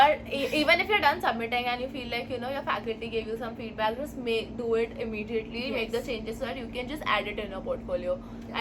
even if you're done submitting and you feel like your faculty gave you some feedback, just do it immediately. Make the changes so that you can just add it in your portfolio.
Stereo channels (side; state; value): both; identical; correlation 1.00